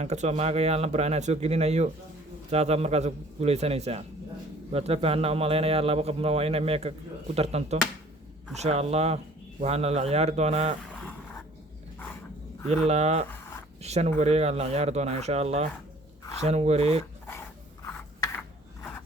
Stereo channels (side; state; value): both; normal; correlation 0.53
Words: kasoo maagaya lambar anaa soo gelinayo saasaa markaas ku guuleysanaysaa waad la fahanna umalaynayaa laba qofna waa inay meeka ku tartanto insha allah waxaana la ciyaari doonaa ilaa 5 wareegaa la ciyaari doonaa insha allah